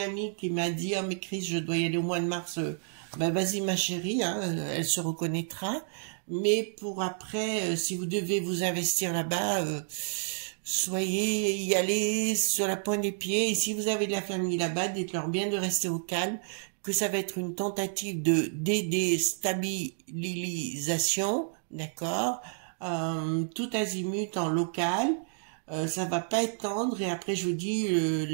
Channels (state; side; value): silent; left; 57 dB below the other